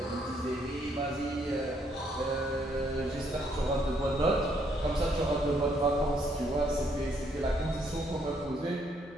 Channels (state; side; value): normal; both; correlation 0.70